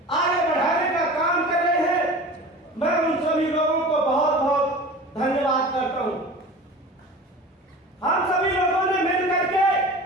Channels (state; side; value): normal; both; correlation 0.37